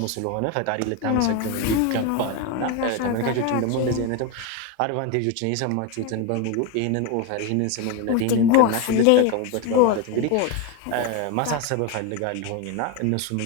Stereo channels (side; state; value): both; different; correlation 0.02